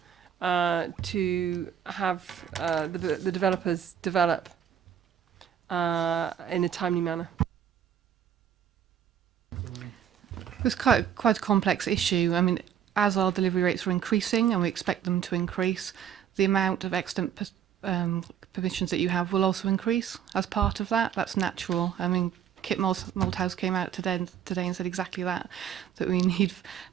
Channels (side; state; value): left; quieter; 9.2 dB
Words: to have the developers develop in a timely manner? It's quite a complex issue. I mean, as our delivery rates are increasing, and we expect them to increase, the amount of extant permissions that you have will also increase as part of that. That's natural. I mean, Kit Malthouse came out today and said exactly that we need